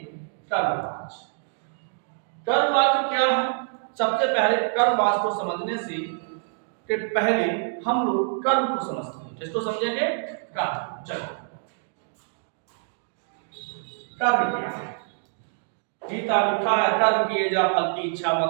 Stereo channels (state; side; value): silent; left; digital silence